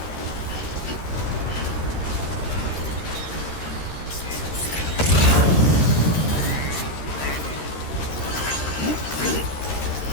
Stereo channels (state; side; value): late; right; 13 ms